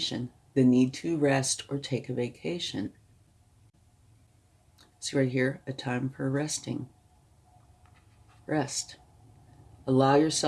The need to rest or take a vacation. See right here, a time for resting. Rest. Allow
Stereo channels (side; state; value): both; identical; correlation 1.00